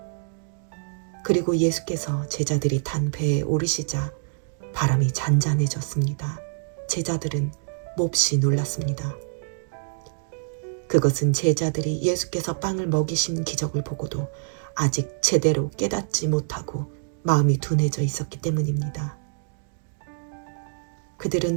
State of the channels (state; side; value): silent; left; digital silence